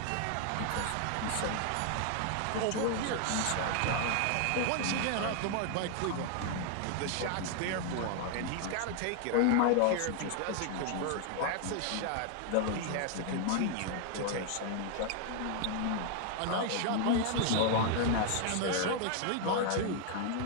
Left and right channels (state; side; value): different; both; correlation 0.00